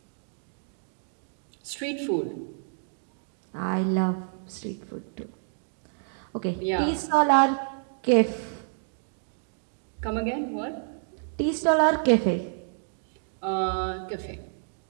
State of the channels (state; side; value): silent; left; digital silence